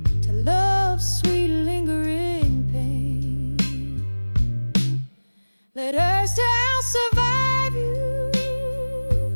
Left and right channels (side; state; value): both; inverted; correlation -1.00